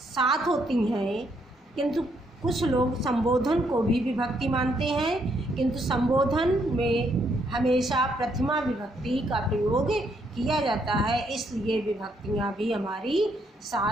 होती हैं, किंतु कुछ लोग संबोधन को भी विभक्ति मानते हैं, किंतु संबोधन में हमेशा प्रथमा विभक्ति का प्रयोग किया जाता है, इसलिए विभक्तियाँ भी हमारी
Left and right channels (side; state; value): both; normal; correlation 0.73